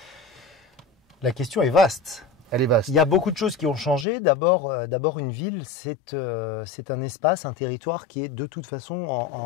La question est vaste. Elle est vaste. Il y a beaucoup de choses qui ont changé. D'abord, une ville, c'est un espace, un territoire qui est de toute façon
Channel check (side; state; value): right; drops out; at 4.0 s